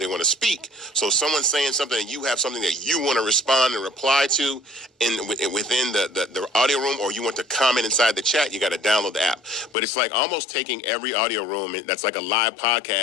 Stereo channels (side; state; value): right; drops out; at 9.8 s